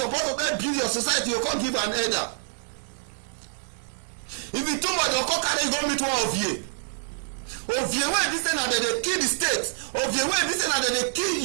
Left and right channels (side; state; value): left; silent; digital silence